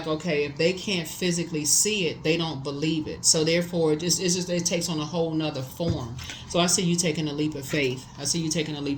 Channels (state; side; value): identical; both; correlation 1.00